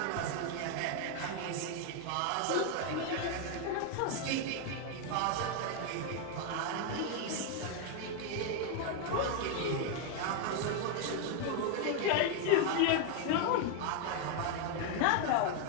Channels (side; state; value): both; different; correlation 0.00